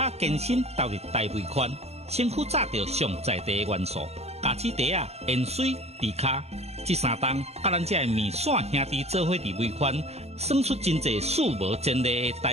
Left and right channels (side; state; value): left; late; 0.30 ms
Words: 健身投入大尾款，身躯炸着上在地的元素，咖子茶啊、盐水、迪卡，这三档甲咱这面线兄弟做伙伫尾款，算出真侪数无前例的